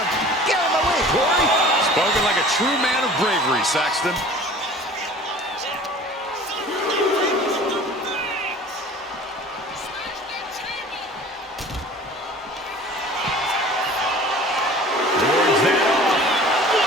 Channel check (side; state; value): both; normal; correlation 0.44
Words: Get out of my way, Corey! Spoken like a true man of bravery, Saxton.